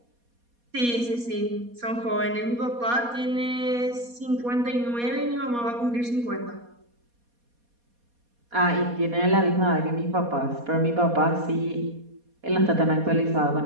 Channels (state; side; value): late; left; 4.2 ms